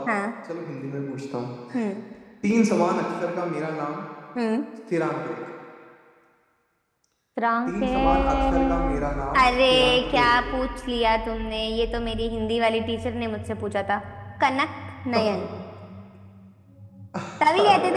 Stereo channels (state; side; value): identical; both; correlation 1.00